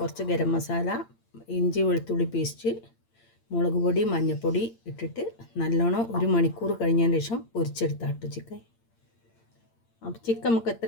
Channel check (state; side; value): late; right; 8.8 ms